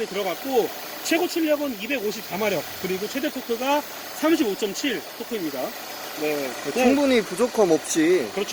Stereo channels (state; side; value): identical; both; correlation 1.00